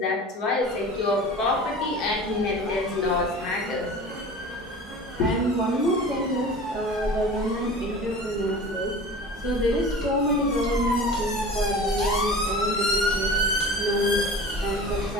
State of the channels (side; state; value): both; normal; correlation 0.38